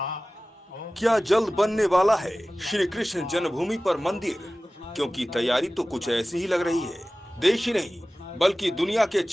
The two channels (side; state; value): both; normal; correlation 0.97